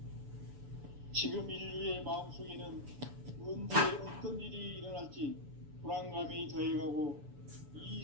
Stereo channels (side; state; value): left; late; 7.0 ms